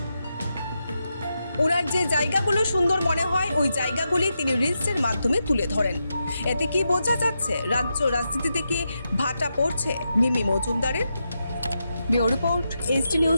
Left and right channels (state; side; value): inverted; both; correlation -0.86